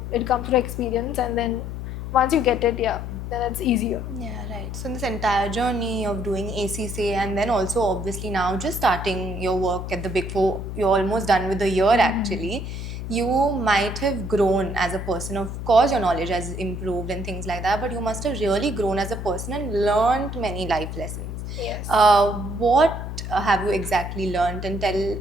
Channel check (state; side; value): noise; left; hum, 6 dB below the sound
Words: it comes through experience, and then once you get it, yeah, then it's easier. Yeah, right. So, in this entire journey of doing ACCA and then also obviously now just starting your work at the Big Four, you're almost done with the year actually. You might have grown as a person. Of course, your knowledge has improved and things like that, but you must have really grown as a person and learned many life lessons. Yes. What have you exactly learned? And tell